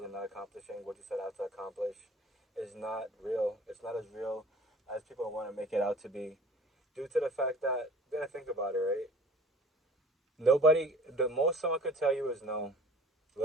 and not accomplishing what you set out to accomplish is not real. It's not as real as people want to make it out to be, due to the fact that, you gotta think about it, right? The most someone could tell you is no.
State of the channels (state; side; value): normal; both; correlation 0.47